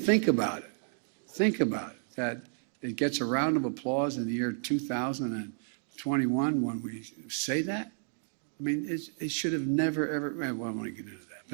about it. Think about it, that it gets a round of applause in the year 2021 when we say that. I mean, it should have never, ever, well, I don't want to get into that.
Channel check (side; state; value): left; silent; digital silence